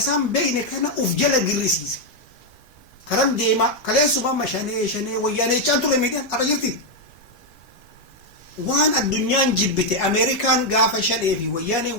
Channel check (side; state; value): right; late; 5.4 ms